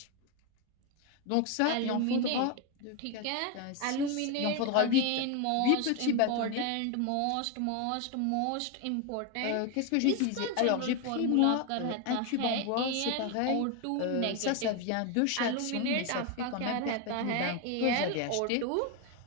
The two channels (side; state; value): both; different; correlation 0.02